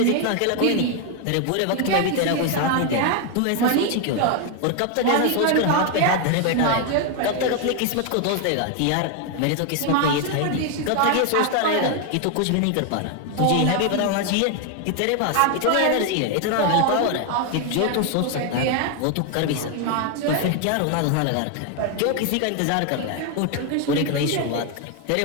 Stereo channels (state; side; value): different; both; correlation 0.01